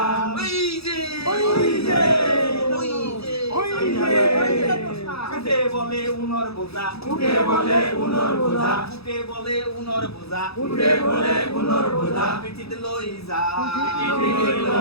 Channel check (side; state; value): right; late; 0.78 ms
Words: ওই যে ওই যে ওই যে ওই যে, উঠে বলে উনর বোঝা, উঠে বলে উনর বোঝা, উঠে বলে উনর বোঝা, উঠে বলে উনর বোঝা, পিঠিত লই যা, পিঠিত